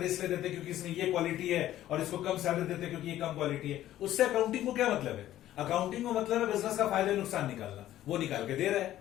इसलिए देते क्योंकि इसमें ये क्वालिटी है, और इसको कम सैलरी देते क्योंकि ये कम क्वालिटी है। उससे अकाउंटिंग को क्या मतलब है? अकाउंटिंग को मतलब है बिजनेस का फायदा नुकसान निकालना, वो निकाल के दे रहा है,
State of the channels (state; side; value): quieter; right; 13.3 dB